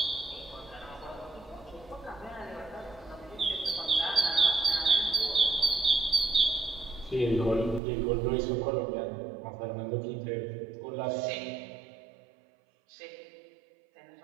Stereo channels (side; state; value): left; drops out; at 7.8 s